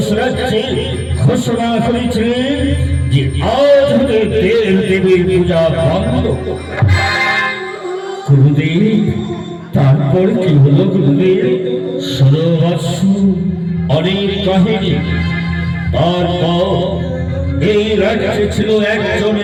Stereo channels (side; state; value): both; identical; correlation 1.00